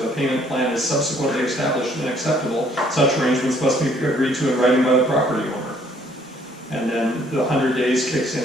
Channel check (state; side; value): normal; both; correlation 0.63